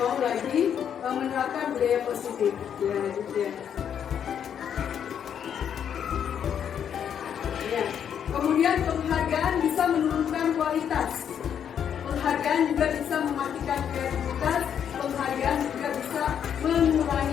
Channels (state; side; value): quieter; right; 8.6 dB